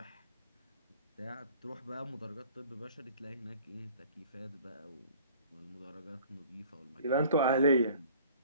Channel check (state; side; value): inverted; both; correlation -0.50